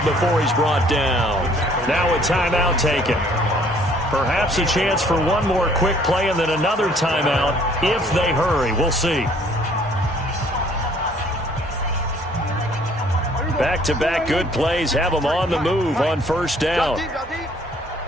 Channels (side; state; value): both; normal; correlation 0.59